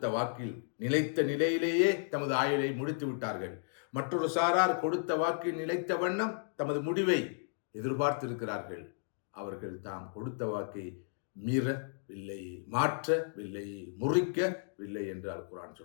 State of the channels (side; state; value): right; silent; digital silence